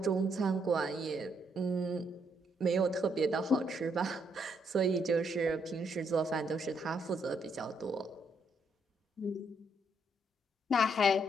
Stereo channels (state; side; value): normal; both; correlation 0.74